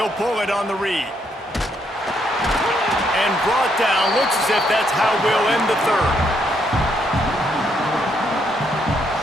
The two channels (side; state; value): both; normal; correlation 0.74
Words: pull it on the read. And brought down. Looks as if that's how we'll end the 3rd.